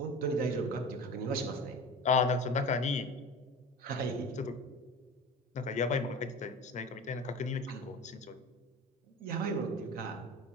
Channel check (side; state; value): both; normal; correlation 0.34